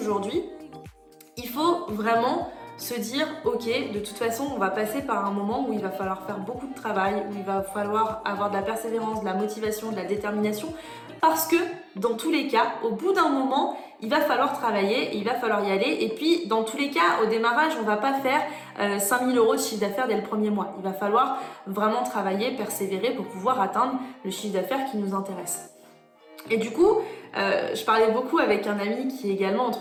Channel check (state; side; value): identical; both; correlation 1.00